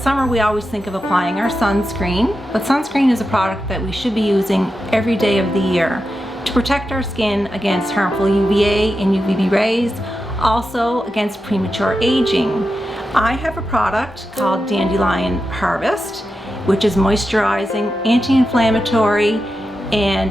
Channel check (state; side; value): normal; both; correlation 0.89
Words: we always think of applying our sunscreen, but sunscreen is a product that we should be using every day of the year to protect our skin against harmful UVA and UVB rays, also against premature aging. I have a product called Dandelion Harvest, which is moisturizing, anti-inflammatory,